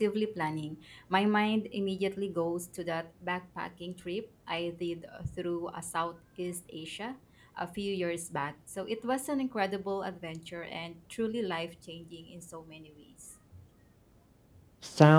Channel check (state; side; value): identical; both; correlation 1.00